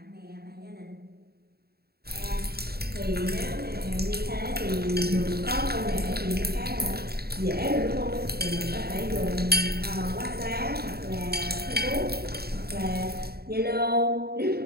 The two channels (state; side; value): late; left; 0.46 ms